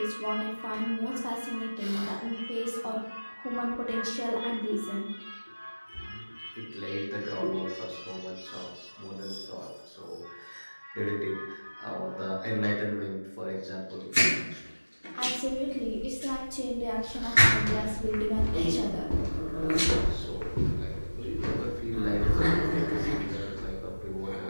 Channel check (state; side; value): inverted; both; correlation -1.00